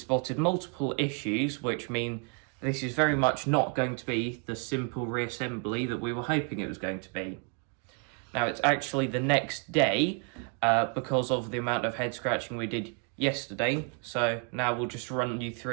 multiple issues, which mean this is very much not going to be the simple reassembly that we were hoping it was going to be. Now it's actually the next day because of the amount of head scratching we did yesterday, so now we'll just run you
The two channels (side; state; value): left; quieter; 37.9 dB